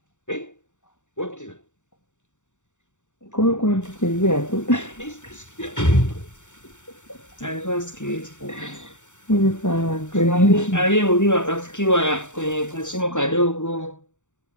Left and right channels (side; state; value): right; late; 0.85 ms